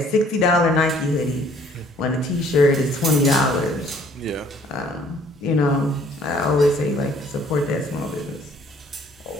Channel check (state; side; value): normal; both; correlation 0.59